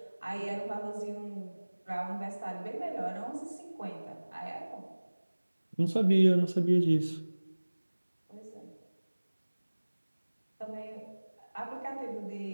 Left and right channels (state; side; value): inverted; both; correlation -1.00